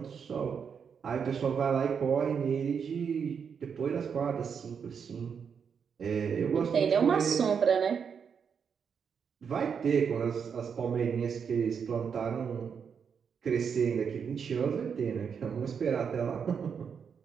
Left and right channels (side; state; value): left; quieter; 6.8 dB